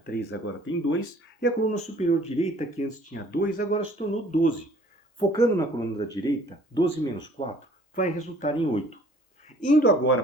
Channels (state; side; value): normal; both; correlation 0.56